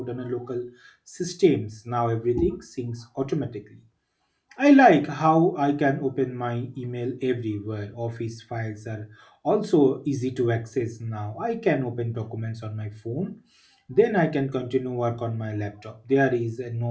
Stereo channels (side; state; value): both; identical; correlation 1.00